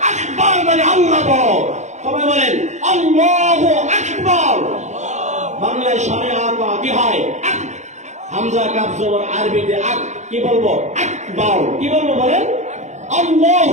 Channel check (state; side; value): late; left; 0.34 ms